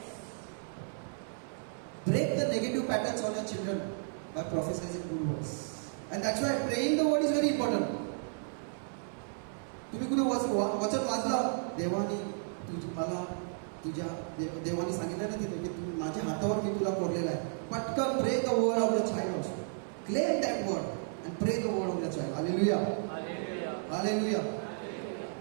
Break the negative patterns on your children by prophesying good words. And that's why praying the word is very important. तुम्ही वचन वाचलं, देवाने मला तुझ्या देवाने सांगितलं ना तिथे की तू माझ्या हातावर मी तुला कोरलेला आहे. पटकन pray the word of the child also. Claim that word and pray the word of the child. Hallelujah, hallelujah.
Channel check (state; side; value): silent; left; 55 dB below the other